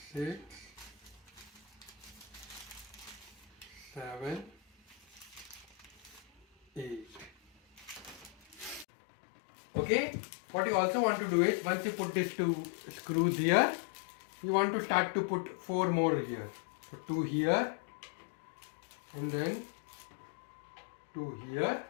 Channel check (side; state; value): right; drops out; at 8.8 s